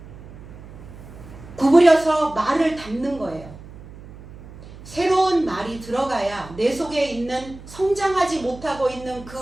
구부려서 말을 담는 거예요. 새로운 말이 들어가야 내 속에 있는 성장하지 못하고 있는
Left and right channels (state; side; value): noise; right; hum, 17 dB below the sound